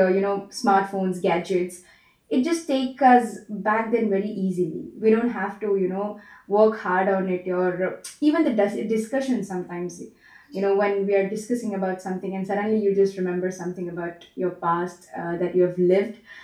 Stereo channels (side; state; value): both; identical; correlation 1.00